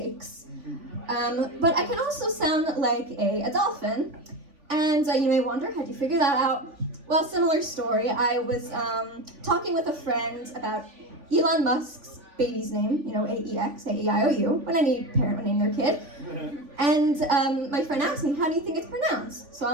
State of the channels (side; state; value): left; late; 3.5 ms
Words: But I can also sound like a dolphin. And you may wonder, how'd you figure that out? Well, similar story. I was talking with a friend about Elon Musk's baby's name, AEX, A-E-I-O-U, when any parent would name their kid. And my friend asked me, how do you think it's pronounced? So